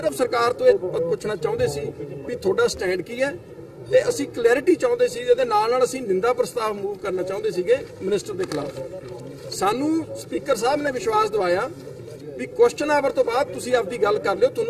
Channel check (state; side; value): identical; both; correlation 1.00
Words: ਸਰਕਾਰ ਤੋਂ ਇਹ ਪੁੱਛਣਾ ਚਾਹੁੰਦੇ ਸੀ ਵੀ ਤੁਹਾਡਾ ਸਟੈਂਡ ਕੀ ਹੈ, ਤੇ ਅਸੀਂ ਕਲੈਰਿਟੀ ਚਾਹੁੰਦੇ ਸੀ। ਇਹਦੇ ਨਾਲ ਅਸੀਂ ਨਿੰਦਾ ਪ੍ਰਸਤਾਵ ਮੂਵ ਕਰਨਾ ਚਾਹੁੰਦੇ ਸੀਗੇ ਮਿਨਿਸਟਰ ਦੇ ਖਿਲਾਫ। ਸਾਨੂੰ ਸਪੀਕਰ ਸਾਹਿਬ ਨੇ ਵਿਸ਼ਵਾਸ ਦਿਵਾਇਆ ਵੀ ਕੁਐਸਚਨ ਆਵਰ ਤੋਂ ਬਾਅਦ ਤੁਸੀਂ ਆਪਦੀ ਗੱਲ ਕਰ ਲਿਓ,